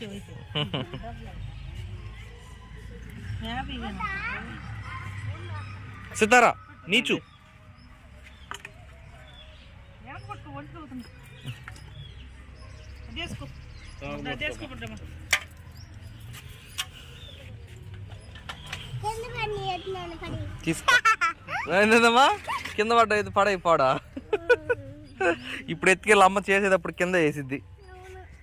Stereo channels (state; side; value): identical; both; correlation 1.00